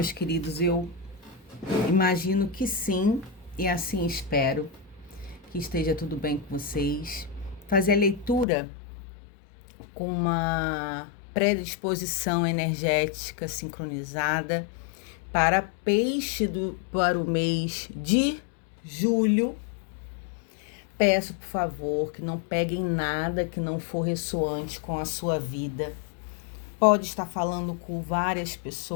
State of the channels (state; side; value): drops out; right; at 8.5 s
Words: queridos? Eu imagino que sim, e assim espero que esteja tudo bem com vocês. Fazer a leitura com uma predisposição energética sincronizada para para o mês de julho. Peço, por favor, que não peguem nada que não for ressoante com a sua vida. Pode estar falando com várias